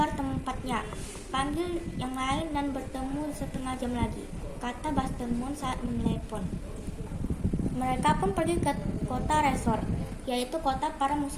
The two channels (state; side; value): identical; both; correlation 1.00